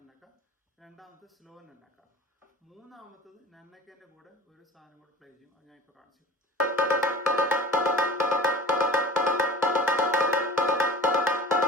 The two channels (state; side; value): normal; both; correlation 0.41